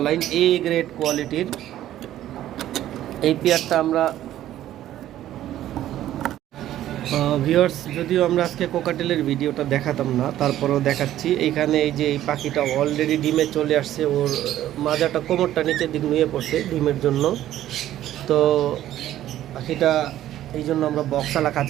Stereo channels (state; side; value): quieter; left; 12.9 dB